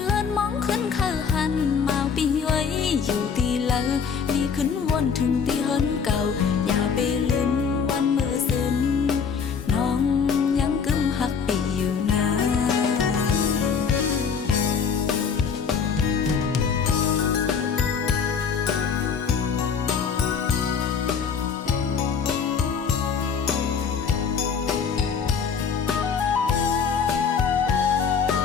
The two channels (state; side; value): quieter; right; 6.3 dB